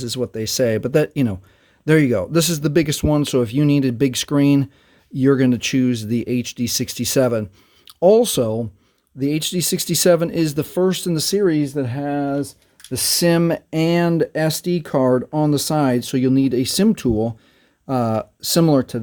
is what they say. But that, there you go. This is the biggest one. So if you need a big screen, you're going to choose the HD67. Also, the HD67 is the first in the series that has the SIM and SD card on the side. So you'll need a SIM tool similar to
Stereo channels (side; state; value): both; identical; correlation 1.00